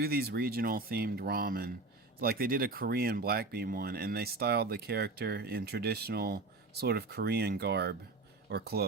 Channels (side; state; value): left; quieter; 3.4 dB